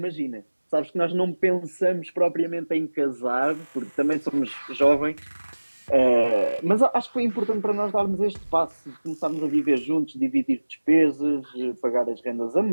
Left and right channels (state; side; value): inverted; both; correlation -1.00